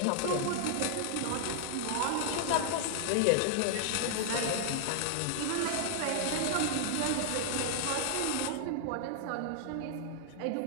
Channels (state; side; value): different; both; correlation 0.00